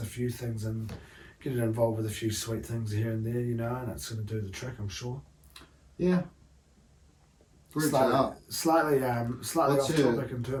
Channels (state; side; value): identical; both; correlation 1.00